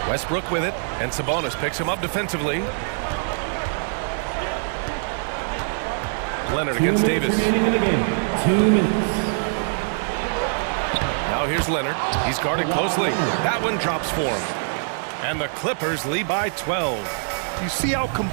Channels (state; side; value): silent; left; digital silence